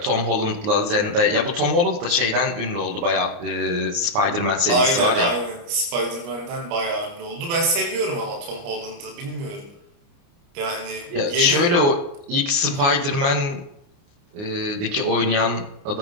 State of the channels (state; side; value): late; left; 29 ms